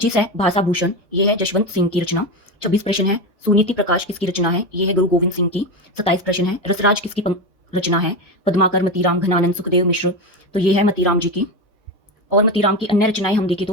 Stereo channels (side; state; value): both; normal; correlation 0.18